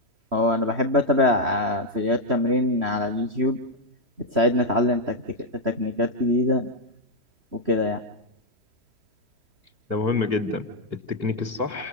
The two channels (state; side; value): late; left; 3.1 ms